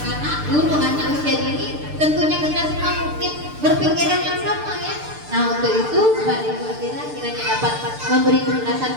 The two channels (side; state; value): left; late; 6.7 ms